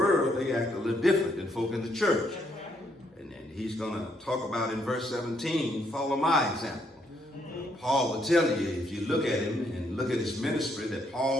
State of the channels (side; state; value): both; normal; correlation 0.72